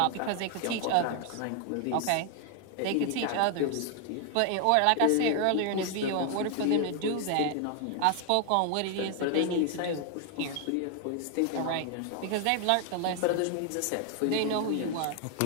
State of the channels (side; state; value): both; different; correlation 0.00